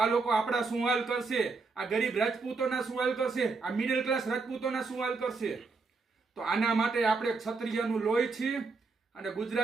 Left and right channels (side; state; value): left; quieter; 4.3 dB